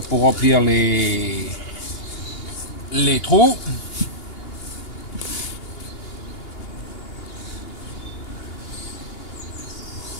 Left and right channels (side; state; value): right; late; 2.8 ms